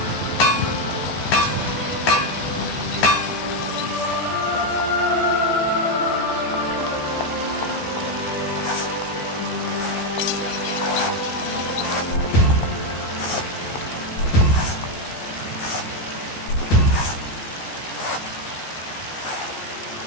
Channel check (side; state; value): right; late; 15 ms